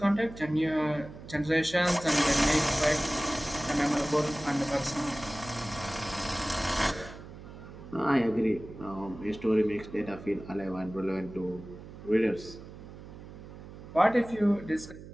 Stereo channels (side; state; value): right; noise; hum, 15 dB below the sound